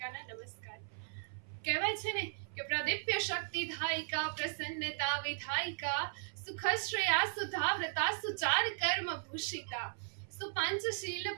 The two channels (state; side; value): silent; left; 53 dB below the other